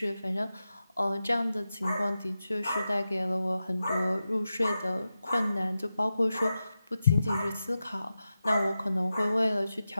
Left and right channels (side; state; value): both; inverted; correlation -0.91